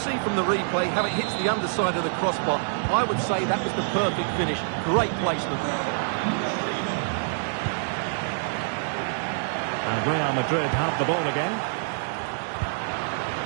from the replay how it hits the underside of the crossbar. I would say that was the perfect finish. Great placement. And Real Madrid have the ball again.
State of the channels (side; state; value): left; silent; digital silence